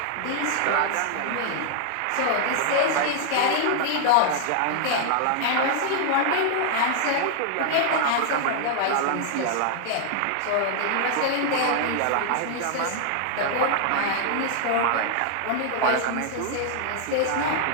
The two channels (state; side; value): different; both; correlation 0.00